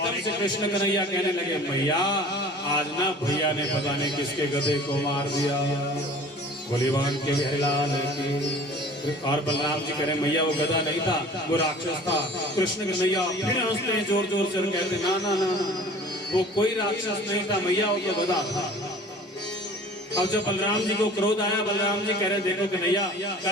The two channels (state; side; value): normal; both; correlation 0.45